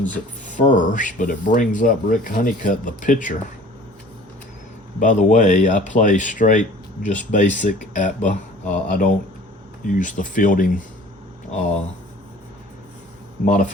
at first, but it brings up Rick Honeycutt, the pitcher. By the way, I play straight, just basic ATBA. I don't use the fielding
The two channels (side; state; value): both; normal; correlation 0.48